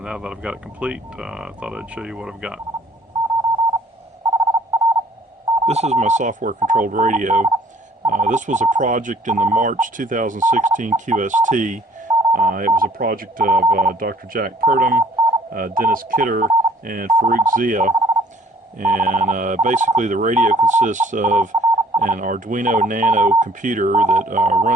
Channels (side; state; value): both; normal; correlation 0.57